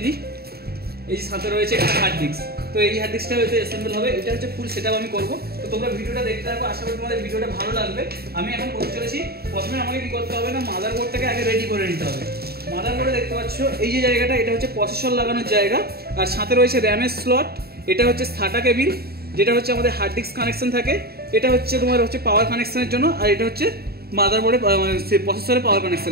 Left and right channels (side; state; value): left; late; 0.45 ms